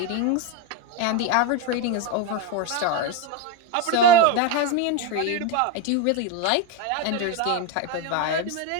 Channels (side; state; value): both; different; correlation 0.03